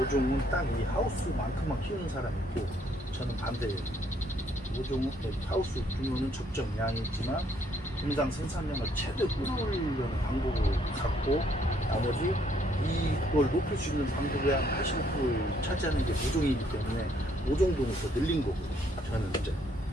딱 이 하우스만큼만 키우는 사람이 있고 저는 반대예요. 모종은 하우스 규모는 적정량이지만 분당 생산량을 최대 끌어올리려는 방법을 갖고 나머지 이걸 높일 수 있는 방법의 한 85%를 차지하는 게 모종이기 때문에 모종동을 더 늘린 거고 저는 이제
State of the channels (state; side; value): normal; both; correlation 0.68